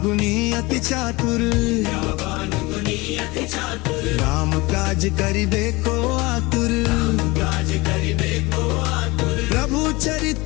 गुणी अति चातुर, विद्यावान गुणी अति चातुर। राम काज करिबे को आतुर। काज करिबे को आतुर। प्रभु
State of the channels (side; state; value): right; quieter; 23.0 dB